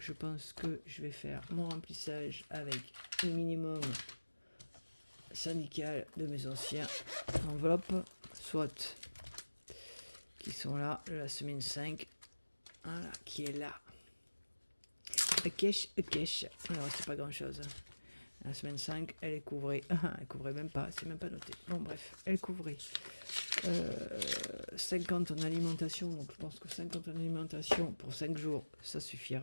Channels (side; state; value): both; inverted; correlation -1.00